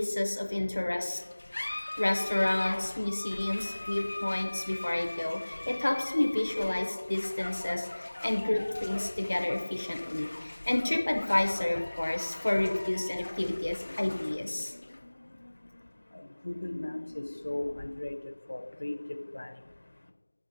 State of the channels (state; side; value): inverted; both; correlation -1.00